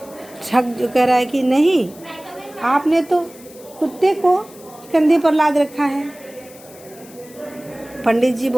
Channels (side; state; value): left; noise; hiss, 22 dB below the sound